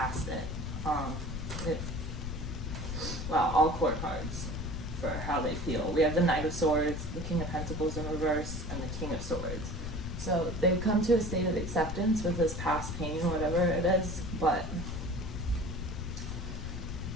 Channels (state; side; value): noise; left; rumble, 5 dB below the sound